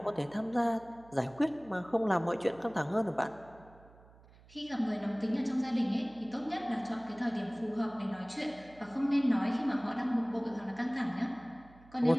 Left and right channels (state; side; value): noise; right; hum, 24 dB below the sound